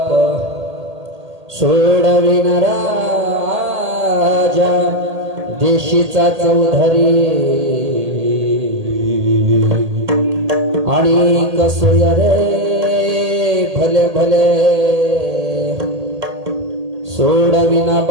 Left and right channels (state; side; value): late; left; 1.8 ms